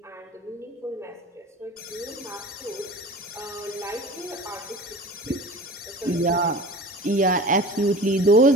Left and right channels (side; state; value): both; normal; correlation 0.38